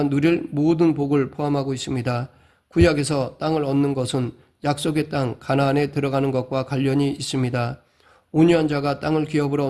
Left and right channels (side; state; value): both; identical; correlation 1.00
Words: 누릴 모든 복을 포함하고 있습니다. 구약에서 땅을 얻는 것은 약속의 땅 가나안에 들어가는 것과 관련이 있습니다. 온유한 자가 땅을 기업으로